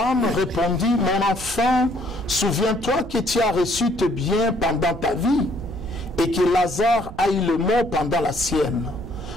répondit, « Mon enfant, souviens-toi que tu as reçu tes biens pendant ta vie et que Lazare a eu le mot pendant la sienne.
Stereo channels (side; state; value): right; noise; rumble, 14 dB below the sound